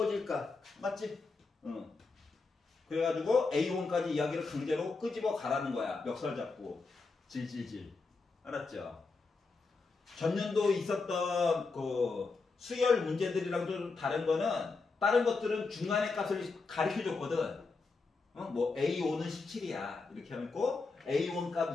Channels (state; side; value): quieter; right; 4.1 dB